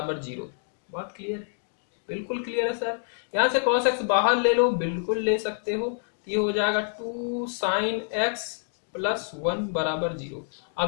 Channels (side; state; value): right; silent; digital silence